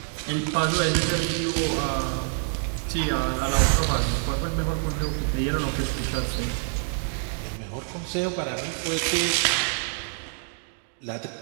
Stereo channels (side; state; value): left; silent; digital silence